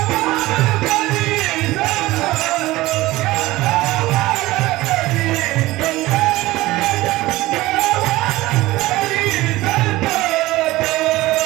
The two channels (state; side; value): quieter; left; 18.5 dB